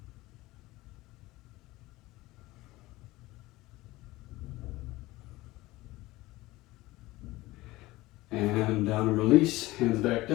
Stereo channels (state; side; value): quieter; right; 19.2 dB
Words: And down and release, hands back